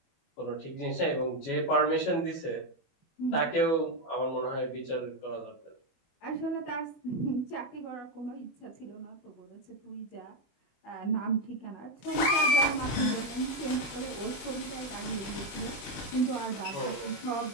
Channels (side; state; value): right; late; 25 ms